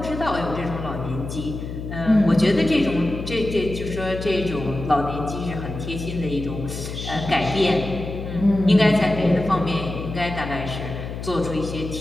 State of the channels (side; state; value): left; noise; hum, 7 dB below the sound